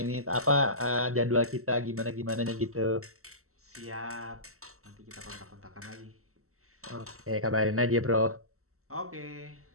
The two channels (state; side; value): late; left; 0.63 ms